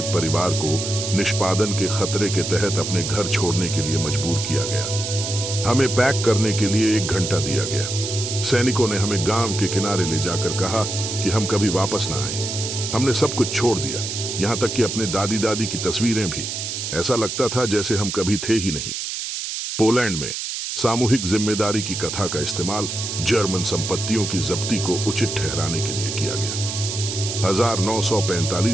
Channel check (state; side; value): noise; right; hiss, 4 dB below the sound